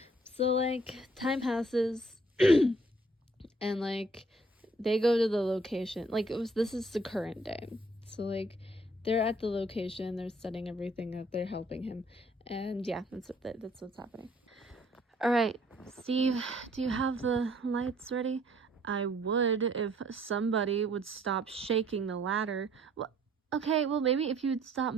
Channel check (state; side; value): normal; both; correlation 0.61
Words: So like time passes and like they go to the location. Like this is the current day. So like they're at the location, they're setting everything up, they're helping him. And yeah, that's what's happening. All right, Steve, do you have the lights ready? I would if somebody would stop shaking the ladder. Well, okay, well maybe if you would stop